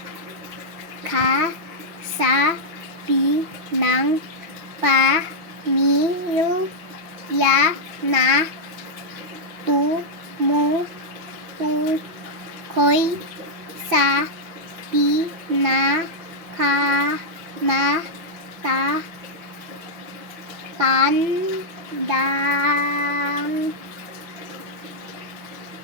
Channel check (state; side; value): late; left; 6.1 ms